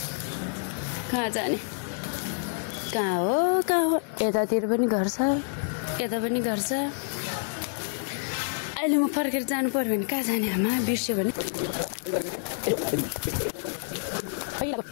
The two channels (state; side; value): silent; right; 59 dB below the other